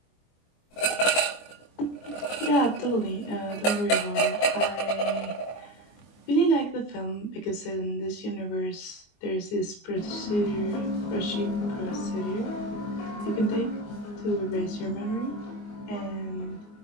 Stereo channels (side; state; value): right; late; 24 ms